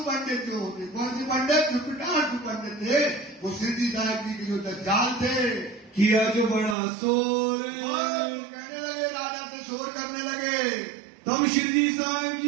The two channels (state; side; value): drops out; left; at 6.8 s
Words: पंडित जो होते, कौन सी पंडित? जो पिटार्थू पंडित थे, वो सिद्धि साहब जी के जो दज्जाल थे। किया जो बड़ा शोर, कहने लगे, राजा से शोर करने लगे। तब श्री साहब